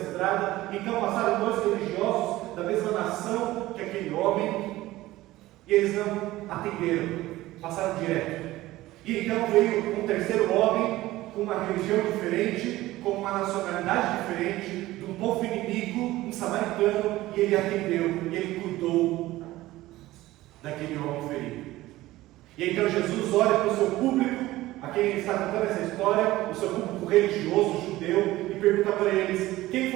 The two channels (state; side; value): quieter; left; 17.0 dB